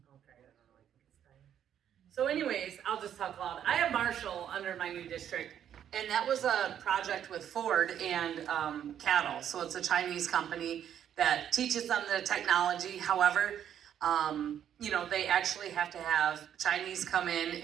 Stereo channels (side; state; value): left; quieter; 9.7 dB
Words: Okay, I don't know, I think it's fine. So anyways, I'll just talk loud. I have Marshall under my new district, and that was a project with Ford and Cattle. So it's a Chinese company that teaches them the technology. However, you know, they actually have to have Chinese come in